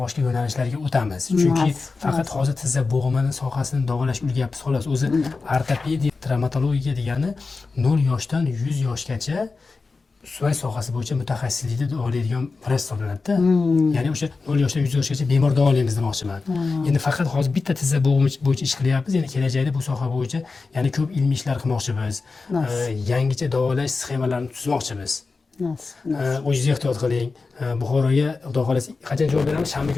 boshqa yo'nalishlarga o'tamiz. Chunki faqat hozir tizza bo'g'imini sohasini davolash o'rganyapmiz xolos. O'zi ortopediya, travmatologiya degani 0 yoshdan 100 yoshgacha suyak sohasi bo'yicha mutaxassislikda davolaydigan vrach hisoblanadi-da. Ya'ni o'sha 0 yoshdan 100 yoshgacha bemor davolaymiz demoqchiman. Endi faqat hozir bitta tizza bo'g'imi bo'yicha ish qilyapmiz. Endi kelajakda bu soha bo'yicha yana ko'p ilmiy ishlar qilmoqchimiz. Yangicha davolash sxemalarini tuzmoqchimiz. O'zingiz ehtiyot qiling. Buxoroga xudo xohlasa qachon javob beramiz? Shanba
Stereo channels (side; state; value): right; quieter; 4.1 dB